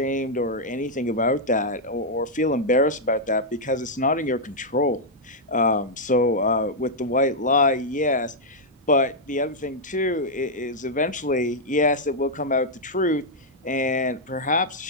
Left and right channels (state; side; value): normal; both; correlation -0.04